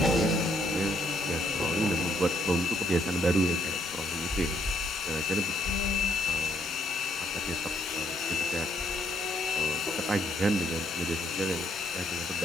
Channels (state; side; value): normal; both; correlation 0.71